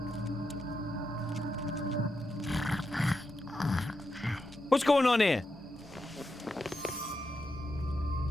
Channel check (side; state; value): both; normal; correlation 0.86